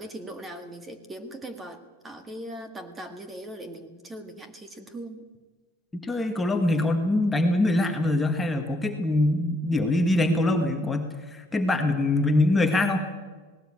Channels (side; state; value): both; normal; correlation 0.76